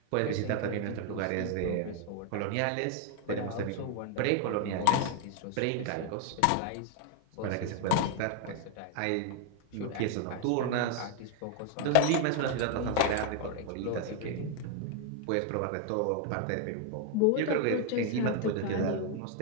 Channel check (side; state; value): both; different; correlation 0.00